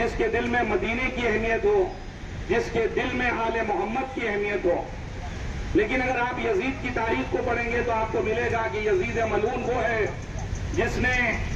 کے دل میں مدینے کی اہمیت ہو، جس کے دل میں آل محمد کی اہمیت ہو۔ لیکن اگر آپ یزید کی تاریخ کو پڑھیں گے تو آپ کو ملے گا کہ یزید ملعون وہ ہے جس نے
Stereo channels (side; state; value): both; identical; correlation 1.00